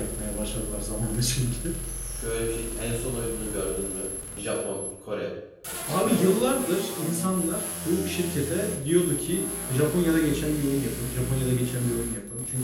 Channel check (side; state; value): both; identical; correlation 1.00